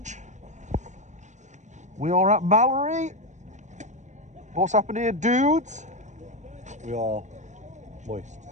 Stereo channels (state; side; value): late; left; 0.35 ms